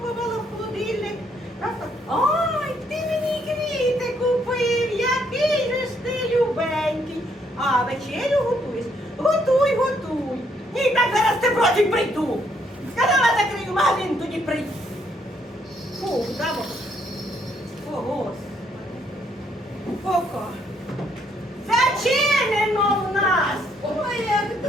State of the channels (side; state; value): both; normal; correlation 0.70